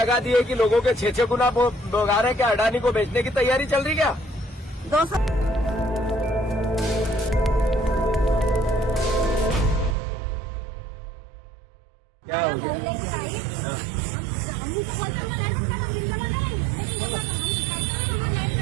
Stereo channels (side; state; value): left; drops out; at 10.0 s